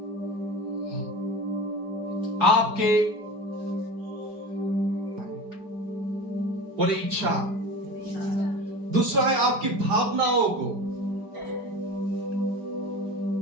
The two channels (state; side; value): late; left; 4.9 ms